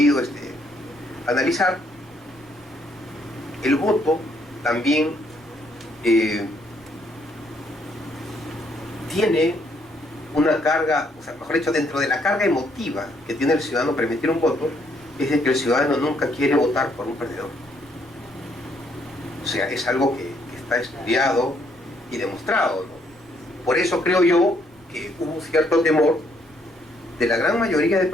analizar, el voto también tiene una carga, o sea, mejor dicho, dentro de la carga emotiva que tiene el ciudadano para emitir un voto, es de que el ciudadano nunca quiere votar por un perdedor. O sea, es algo que está estudiado y demostrado, ¿no? Por eso creo yo que hubo cierto temor de la gran mayoría de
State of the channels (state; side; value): noise; right; rumble, 30 dB below the sound